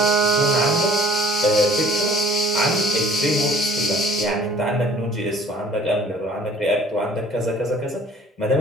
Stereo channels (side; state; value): both; normal; correlation 0.52